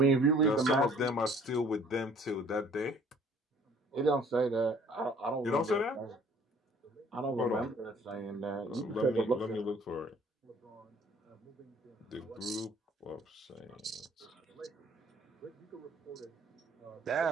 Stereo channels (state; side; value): normal; both; correlation 0.55